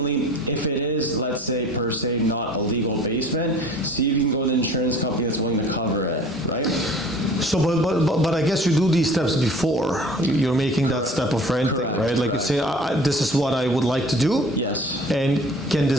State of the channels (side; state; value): both; normal; correlation 0.47